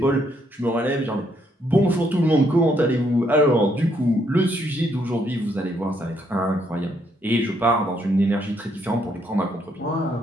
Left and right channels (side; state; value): both; normal; correlation 0.72